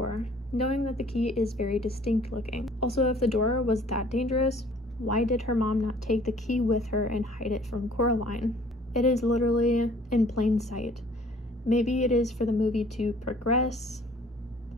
knowing that the key is very distinct looking. Also, if the door was that dangerous, why did her mom not take the key with her and hide it from Coraline? It is literally in plain sight. Maybe it is for the movie to progress.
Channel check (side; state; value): both; normal; correlation 0.55